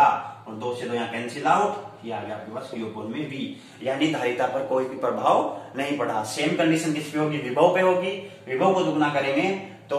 और 2 से 2 यहाँ कैंसिल आउट, ये आ गया आपके पास Q में V, यानी धारिता पर कोई भी प्रभाव नहीं पड़ा। सेम कंडीशन किस पे होगी, विभव पे होगी। विभव को दुगना करेंगे तो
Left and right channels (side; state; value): both; identical; correlation 1.00